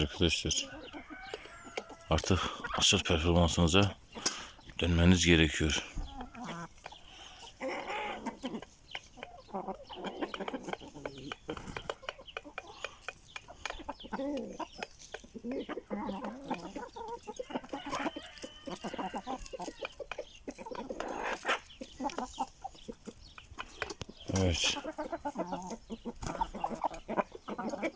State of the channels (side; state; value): both; identical; correlation 1.00